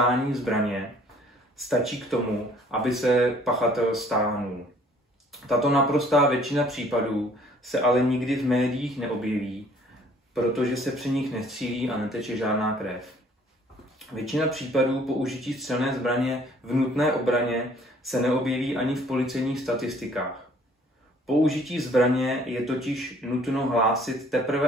zbraně stačí k tomu, aby se pachatel stáhnul. Tato naprostá většina případů se ale nikdy v médiích neobjeví, protože se při nich nestřílí a neteče žádná krev. Většina případů použití střelné zbraně v nutné obraně se neobjeví ani v policejních statistikách. Použití zbraně je totiž nutno hlásit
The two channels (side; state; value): both; normal; correlation 0.57